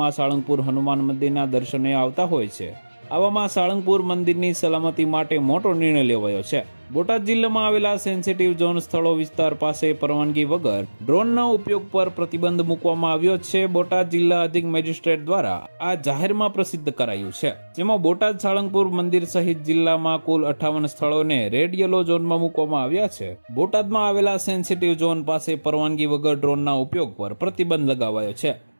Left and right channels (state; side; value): inverted; both; correlation -1.00